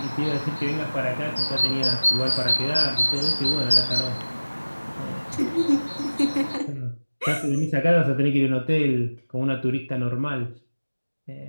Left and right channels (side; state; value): both; inverted; correlation -1.00